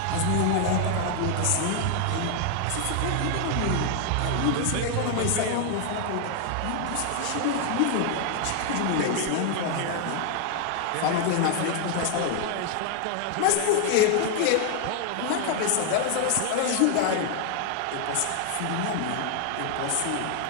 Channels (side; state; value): both; different; correlation 0.00